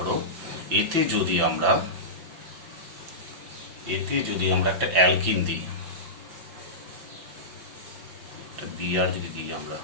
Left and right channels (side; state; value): left; late; 6.0 ms